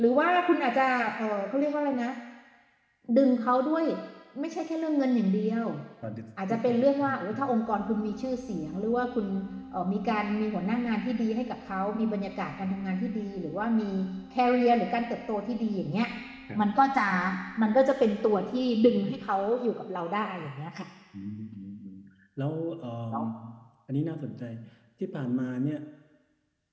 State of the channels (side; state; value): both; identical; correlation 1.00